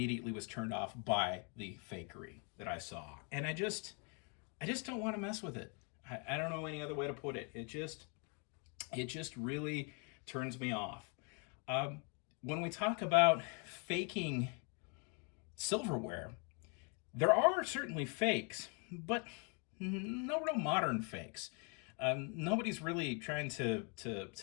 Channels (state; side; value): quieter; right; 36.1 dB